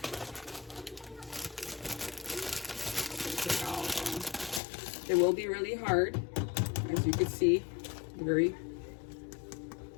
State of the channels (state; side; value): drops out; right; at 4.6 s